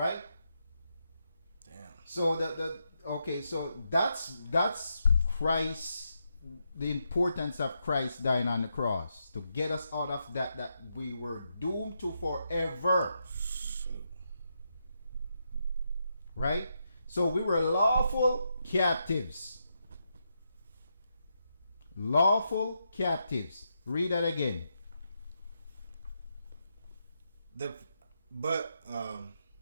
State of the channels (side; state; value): both; inverted; correlation -0.83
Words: Damn. So so that's Christ, the importance of Christ dying on the cross to get us out of that we were doomed to forever. Shoot. Right? So we were lawful captives. Lawful captives. Read that again.